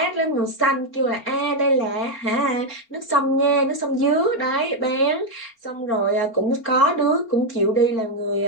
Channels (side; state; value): right; late; 4.4 ms